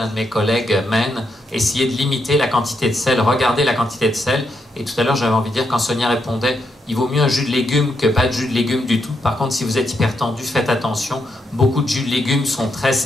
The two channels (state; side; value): normal; both; correlation 0.80